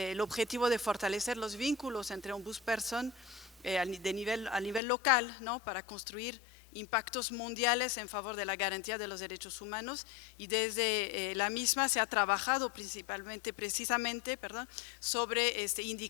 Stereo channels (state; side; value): drops out; right; at 4.8 s